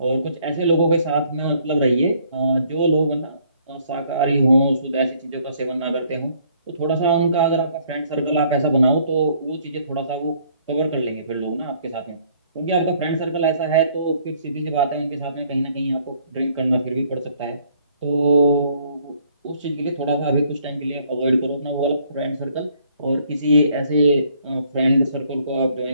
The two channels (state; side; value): inverted; both; correlation -0.63